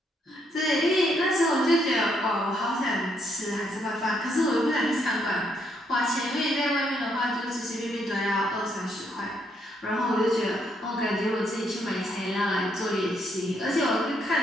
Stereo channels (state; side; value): normal; both; correlation 0.74